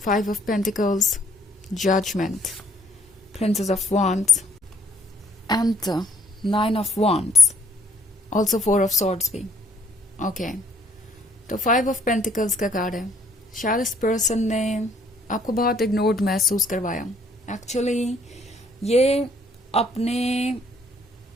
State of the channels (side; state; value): both; normal; correlation 0.64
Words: 5 of Pentacles, Judgment, Princess of Wands, and 9 of Wands. Also 4 of Swords भी. ओके, तो 5 of Pentacles का कार्ड है. शायद इस पर्सन ने आपको बहुत इग्नोर्ड महसूस करवाया. एक्चुअली ये अपने